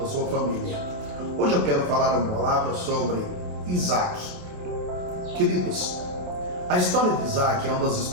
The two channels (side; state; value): left; late; 28 ms